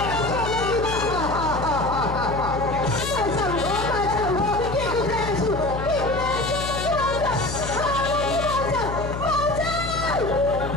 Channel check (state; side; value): noise; left; hum, 6 dB below the sound